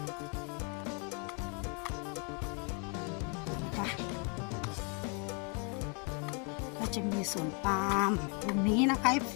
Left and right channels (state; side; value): quieter; right; 36.3 dB